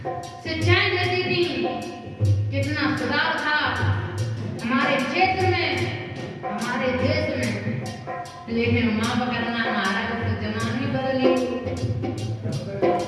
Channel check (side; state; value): both; identical; correlation 1.00